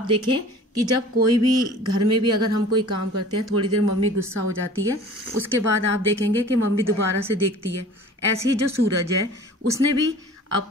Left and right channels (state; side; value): normal; both; correlation 0.44